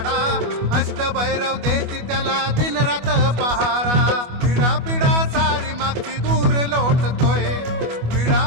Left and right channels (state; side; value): late; left; 25 ms